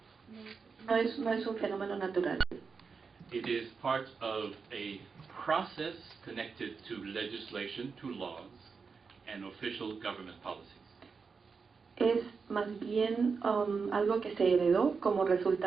No es un fenómeno natural. It is part of a process connected to legislation, to laws, and official government policies. Es más bien algo que se heredó como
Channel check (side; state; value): left; quieter; 5.2 dB